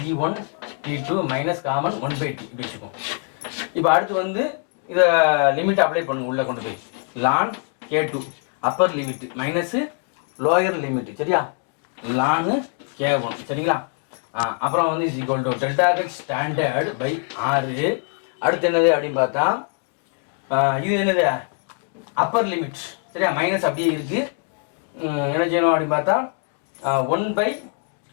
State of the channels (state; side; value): quieter; right; 39.1 dB